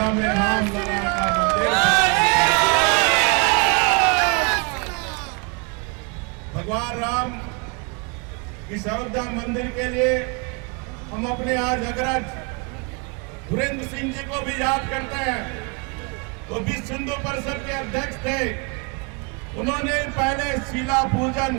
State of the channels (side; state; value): left; quieter; 32.3 dB